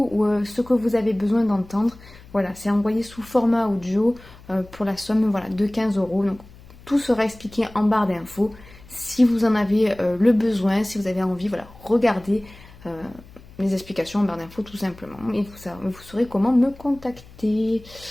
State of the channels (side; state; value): left; noise; hum, 22 dB below the sound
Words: ou ce que vous avez besoin d'entendre. Voilà, c'est envoyé sous format audio pour la somme de 15 €. Donc tout sera expliqué en barre d'infos. Si vous en avez le besoin, si vous avez envie, regardez les explications en barre d'infos tout simplement. Et vous saurez comment me contacter.